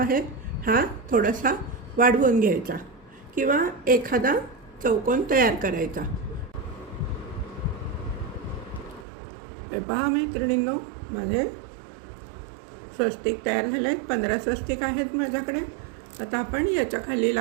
हा थोडासा वाढवून घ्यायचा किंवा एखादा चौकोन तयार करायचा. हे पहा मैत्रिणींनो, माझे स्वस्तिक तयार झाले आहेत. 15 स्वस्तिक आहेत माझ्याकडे. आता आपण याच्या खाली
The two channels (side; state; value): left; drops out; at 9.1 s